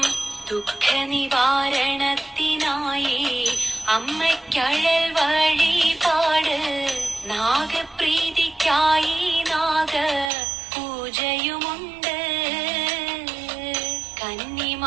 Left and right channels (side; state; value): left; drops out; at 10.3 s